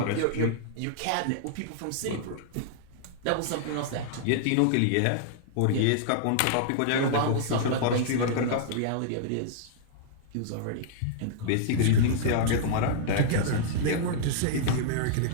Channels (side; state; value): both; different; correlation -0.01